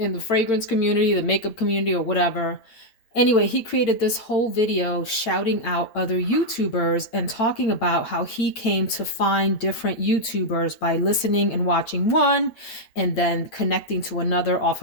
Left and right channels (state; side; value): late; right; 8.9 ms